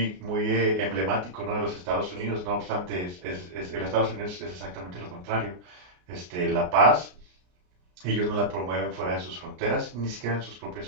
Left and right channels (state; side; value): late; left; 33 ms